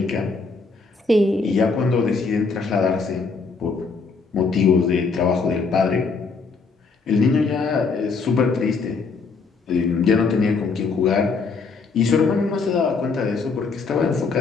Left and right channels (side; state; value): right; quieter; 4.6 dB